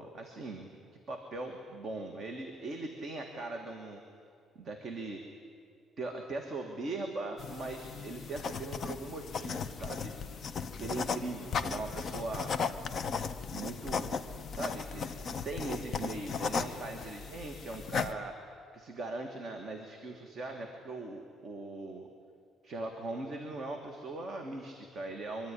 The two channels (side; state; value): both; normal; correlation 0.68